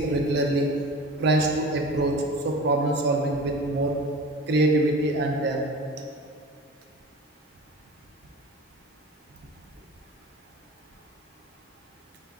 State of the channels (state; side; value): normal; both; correlation 0.37